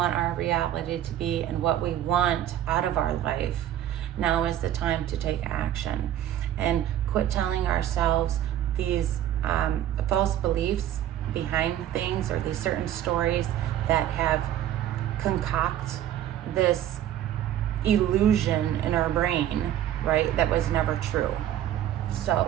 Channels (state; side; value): quieter; left; 11.6 dB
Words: our reality to be and what we want out of our life, now is the time to take action and quit telling ourselves these false beliefs behind things, or these certain stories that have concoct this illusion in our brain, right, that was never true.